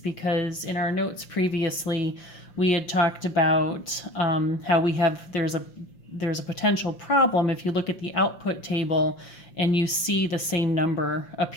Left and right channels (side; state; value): right; late; 5.7 ms